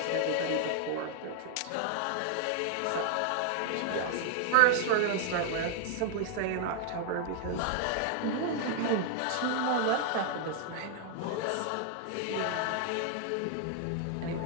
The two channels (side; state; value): both; different; correlation 0.00